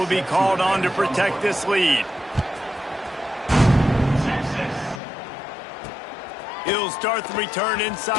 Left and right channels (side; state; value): right; drops out; at 5.0 s